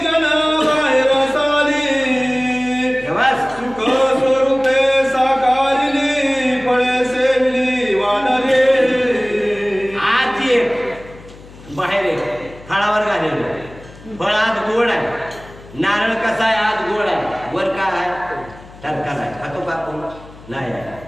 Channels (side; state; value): left; noise; hum, 20 dB below the sound